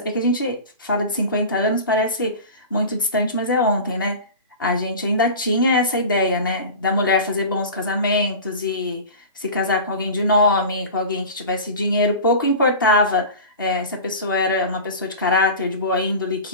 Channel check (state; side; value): inverted; both; correlation -0.33